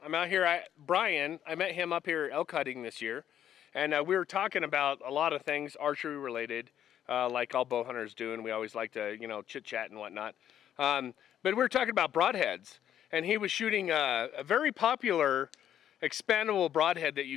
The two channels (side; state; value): right; quieter; 10.3 dB